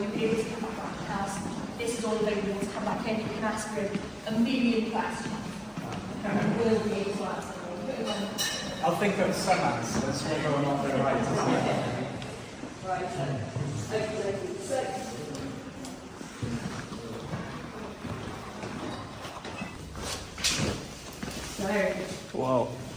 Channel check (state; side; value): identical; both; correlation 1.00